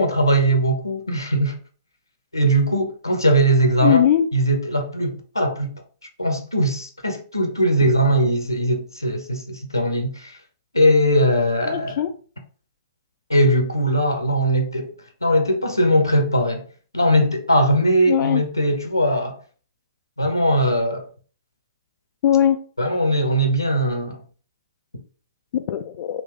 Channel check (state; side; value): inverted; both; correlation -0.61